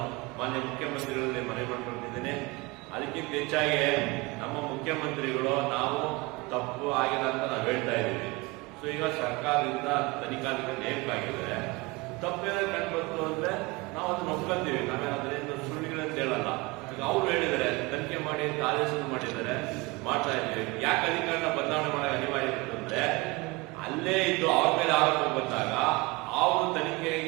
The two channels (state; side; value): quieter; left; 24.8 dB